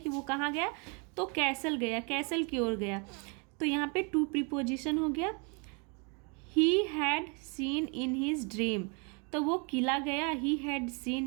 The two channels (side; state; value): left; quieter; 34.2 dB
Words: वो कहाँ गया, तो कैसल गया, कैसल की ओर गया, तो यहाँ पे टू प्रीपोजिशन हो गया। He had seen in his dream, तो वो किला गया, he had